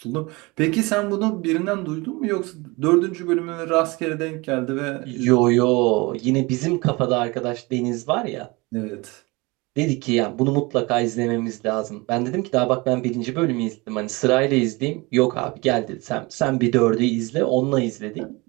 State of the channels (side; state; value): left; quieter; 24.8 dB